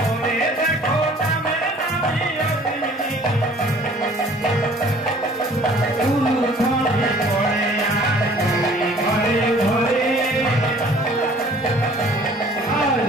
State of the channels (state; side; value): normal; both; correlation 0.53